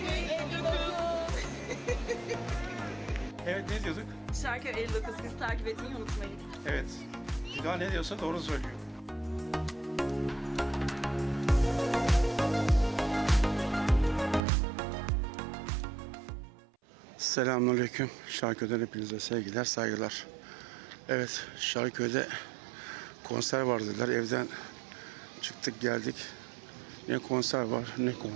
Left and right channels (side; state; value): left; drops out; at 14.4 s